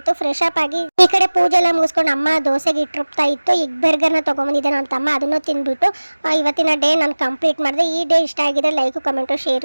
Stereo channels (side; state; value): both; inverted; correlation -1.00